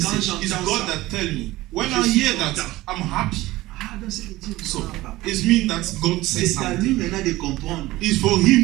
Quand It's j'entends God ça, that tell me. When je I suis hear that, content. I'm happy. Donc c'est Dieu qui So, parle. it means that God says C'est à lui something. maintenant de comprendre. It's for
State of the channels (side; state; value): left; quieter; 18.1 dB